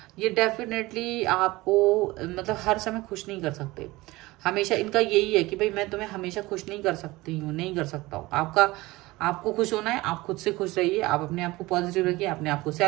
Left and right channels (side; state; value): left; quieter; 20.3 dB